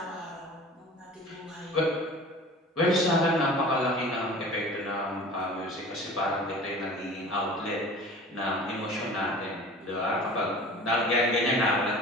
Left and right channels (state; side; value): normal; both; correlation 0.41